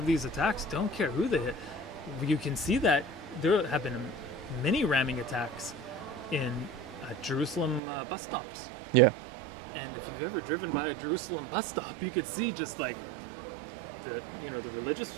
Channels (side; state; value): left; drops out; at 7.8 s